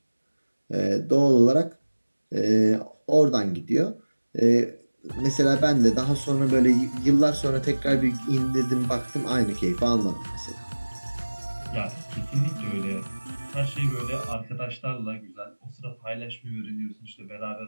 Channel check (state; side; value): inverted; both; correlation -1.00